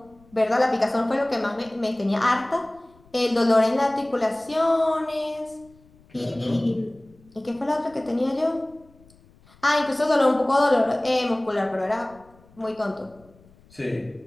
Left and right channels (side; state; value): left; noise; rumble, 28 dB below the sound